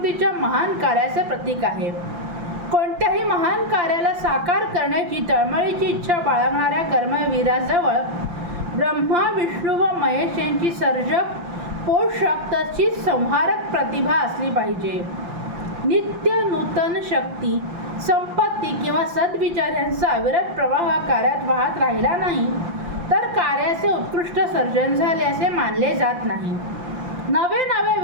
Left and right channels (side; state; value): left; late; 5.8 ms